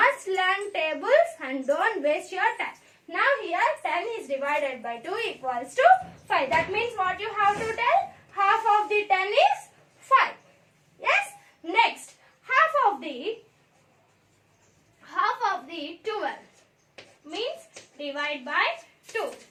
learn tables and don't waste your time. Now here 10 is divided by 2 equals to 5. That means what you have to tell? Half of the 10 is 5. Yes? Next, half of the 12 means divide by 2.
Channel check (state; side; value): identical; both; correlation 1.00